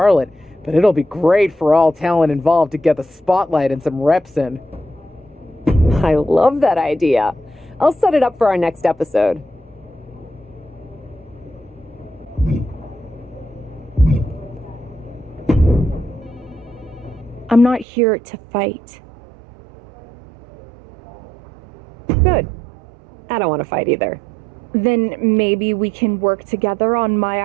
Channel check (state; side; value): drops out; left; at 17.9 s